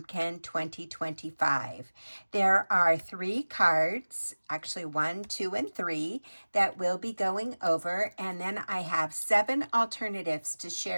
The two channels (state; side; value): inverted; both; correlation -1.00